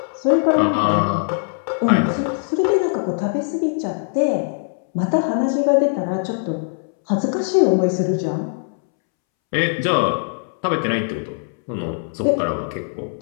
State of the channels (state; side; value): silent; right; 65 dB below the other